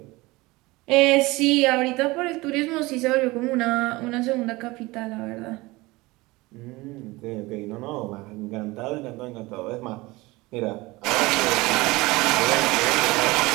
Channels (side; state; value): left; quieter; 21.6 dB